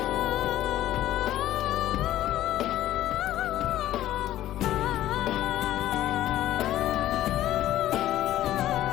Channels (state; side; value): quieter; right; 13.7 dB